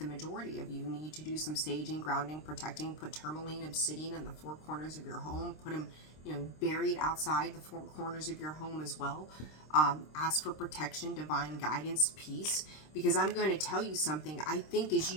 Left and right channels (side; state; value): right; late; 26 ms